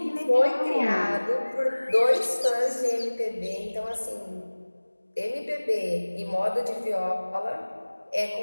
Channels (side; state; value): both; inverted; correlation -1.00